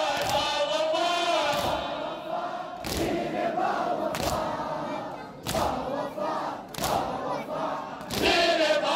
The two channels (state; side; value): identical; both; correlation 1.00